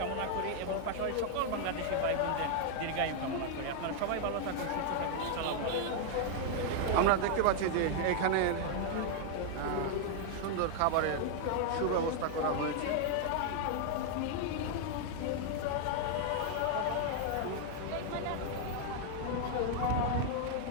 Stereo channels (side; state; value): both; different; correlation 0.00